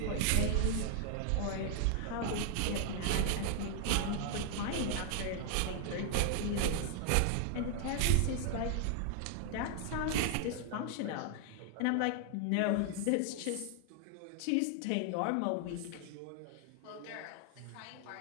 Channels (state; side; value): different; both; correlation 0.00